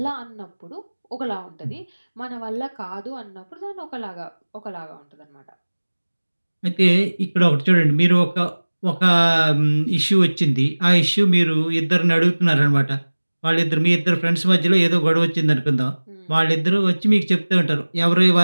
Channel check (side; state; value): both; inverted; correlation -1.00